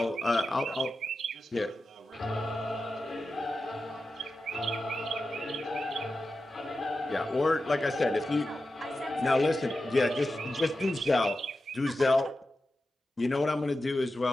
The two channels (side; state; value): both; normal; correlation 0.91